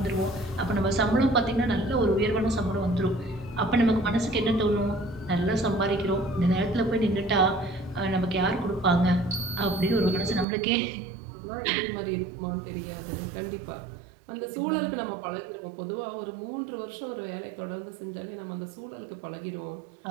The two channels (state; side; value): drops out; left; at 10.5 s